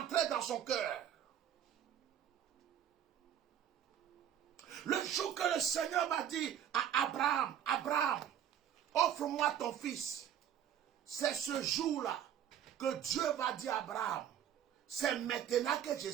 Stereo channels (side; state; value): left; quieter; 9.9 dB